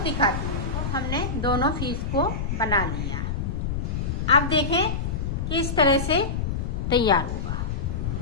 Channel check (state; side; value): noise; left; rumble, 2 dB below the sound